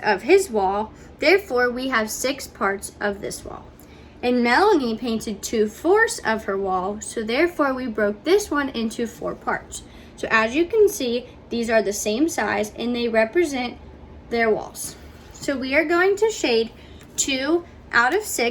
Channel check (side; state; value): both; identical; correlation 1.00